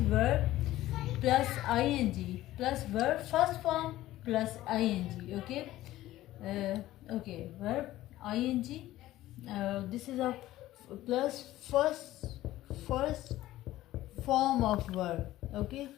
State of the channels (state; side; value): quieter; right; 15.4 dB